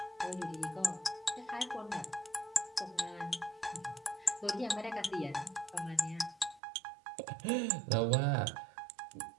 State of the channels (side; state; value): left; drops out; at 6.6 s